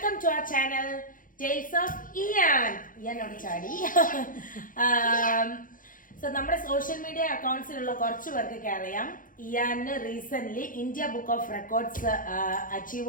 to our channel Tales of Ian. Ian on Chadi. So നമ്മുടെ social media അക്കൗണ്ട്സിലുള്ള കുറച്ച് പേർക്കൊക്കെ അറിയാം ഇയാന് recent India book of records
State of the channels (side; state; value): right; late; 0.39 ms